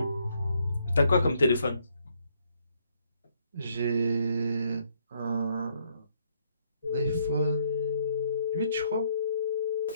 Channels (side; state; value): both; inverted; correlation -0.70